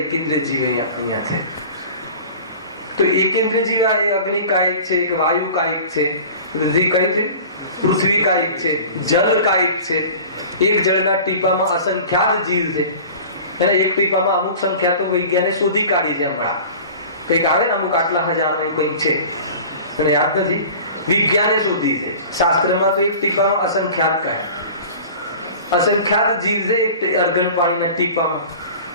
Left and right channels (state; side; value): inverted; both; correlation -0.40